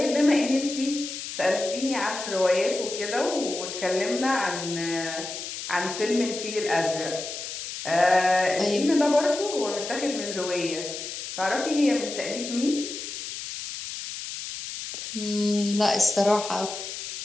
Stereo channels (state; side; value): noise; left; hiss, 8 dB below the sound